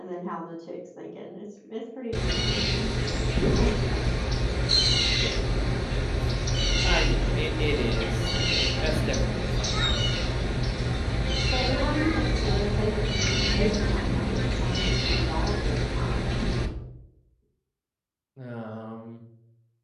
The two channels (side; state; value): both; identical; correlation 1.00